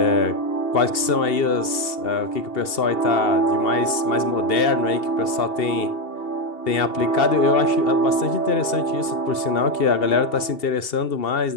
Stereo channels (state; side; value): late; right; 2.7 ms